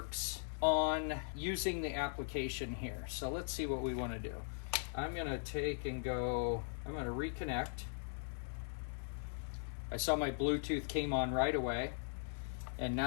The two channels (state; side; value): silent; right; digital silence